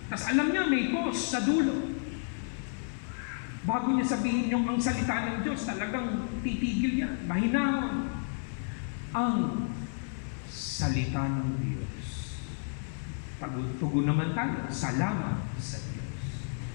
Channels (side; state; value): right; silent; digital silence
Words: Tapos alam niya, may pause sa dulo. Bago niya sabihin yung ang salita ng Diyos, talagang titigil yan, mahinahon. Ang salita ng Diyos. Pagtugon naman tayo, salamat sa Diyos.